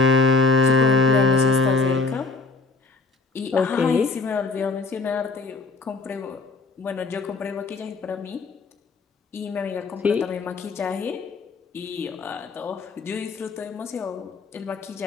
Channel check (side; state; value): right; quieter; 4.0 dB